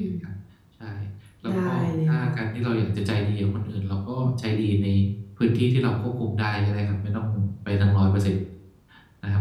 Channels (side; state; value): both; identical; correlation 1.00